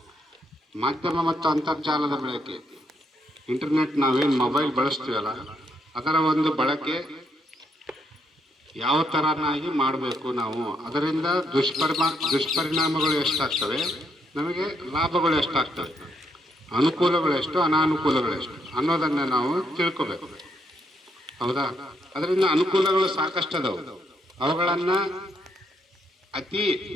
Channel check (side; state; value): both; normal; correlation 0.75